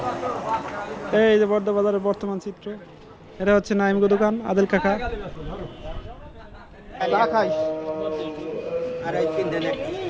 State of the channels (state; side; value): identical; both; correlation 1.00